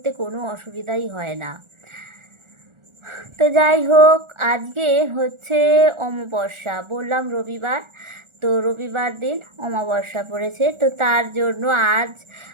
কোনো অসুবিধাই হয় না। তো যাই হোক, আজকে হচ্ছে অমাবস্যা, বললাম রবিবার। তো রবিবার দিন অমাবস্যা পড়েছে, তো তার জন্য আজ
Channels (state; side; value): late; left; 1.4 ms